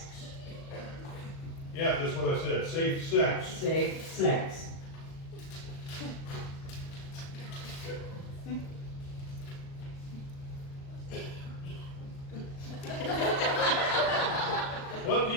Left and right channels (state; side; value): late; right; 37 ms